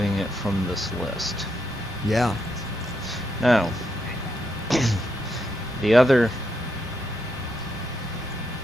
it from this list. Yeah. Now, the other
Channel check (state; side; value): normal; both; correlation 0.80